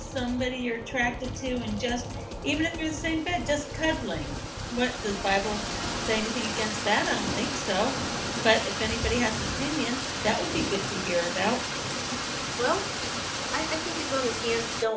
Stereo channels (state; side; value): identical; both; correlation 1.00